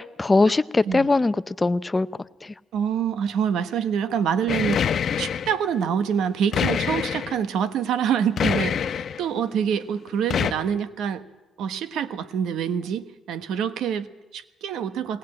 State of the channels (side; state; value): both; normal; correlation 0.71